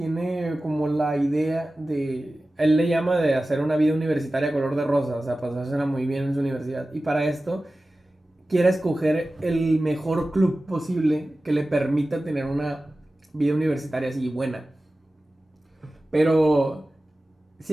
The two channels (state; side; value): normal; both; correlation 0.96